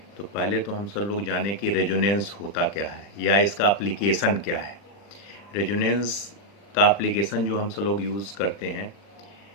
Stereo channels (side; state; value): right; late; 40 ms